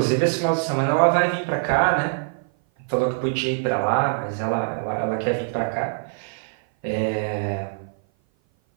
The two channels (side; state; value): left; silent; 57 dB below the other